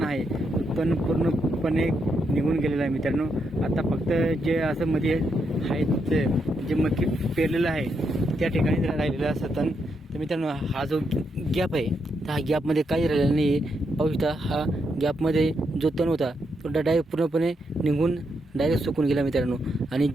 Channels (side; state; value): both; normal; correlation 0.81